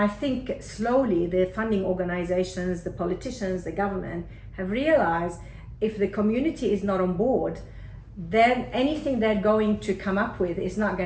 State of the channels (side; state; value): both; identical; correlation 1.00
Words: think slowly the funding organizations, the politicians, the government have realized if the community is not on board, then anything they're going to come up with is not